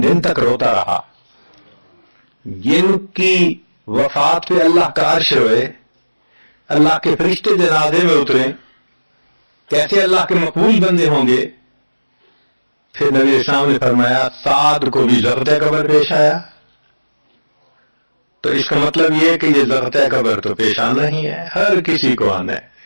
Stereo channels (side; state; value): both; inverted; correlation -1.00